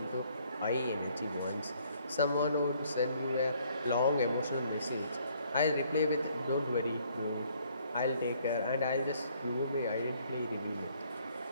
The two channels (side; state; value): both; inverted; correlation -0.64